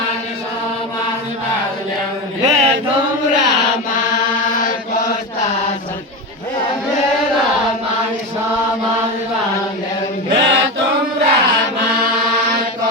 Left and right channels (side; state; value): both; normal; correlation 0.20